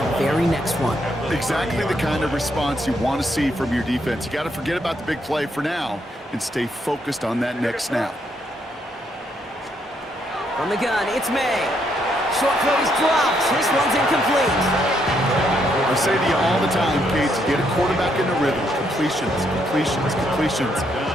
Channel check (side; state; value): both; normal; correlation 0.74